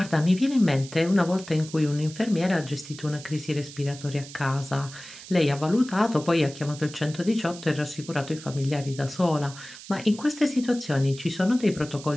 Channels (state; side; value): noise; right; hiss, 16 dB below the sound